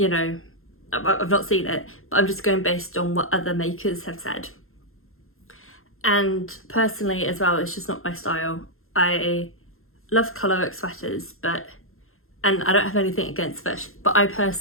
know, I've not seen it, but I'm just going based on what other makers have said. And personally as well, it's just not my style. I love colourwork sweaters, and I don't have anything against fish, but I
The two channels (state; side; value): late; right; 0.61 ms